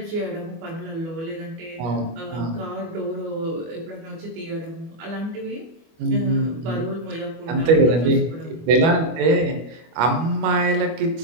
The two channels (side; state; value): left; late; 25 ms